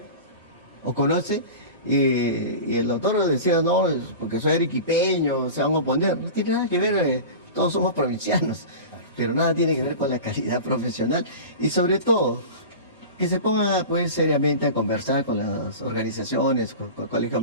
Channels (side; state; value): both; inverted; correlation -0.32